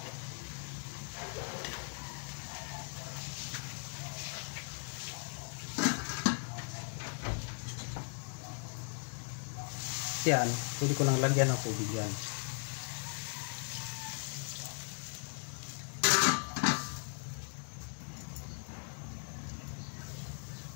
Yan, pwede ko nang lagyan ng tubig yan.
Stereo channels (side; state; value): right; silent; 52 dB below the other